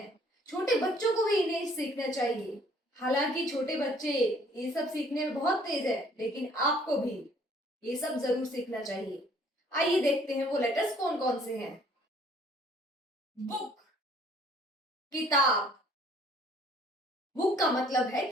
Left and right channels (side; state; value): both; normal; correlation 0.59